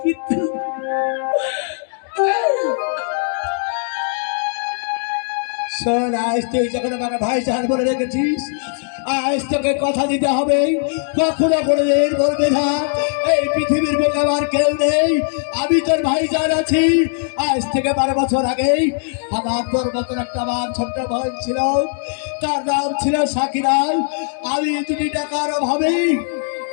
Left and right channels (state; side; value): silent; right; digital silence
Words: কিন্তু শোন, আজ তুই যখন আমার ভাই জান বলে রেখেছিস, আজ তোকে কথা দিতে হবে, কখনো কোনোদিন বলবে না এই পৃথিবীর বুকে আমার কেউ নেই, আমি তোর ভাই জান আছি। আজ থেকে 12 বছর আগেই আমার তোর মতন একটা আমার ছোট্ট বোন ছিল, তার নাম ছিল সাকিরাল। আমি 2 টাকার অভাবে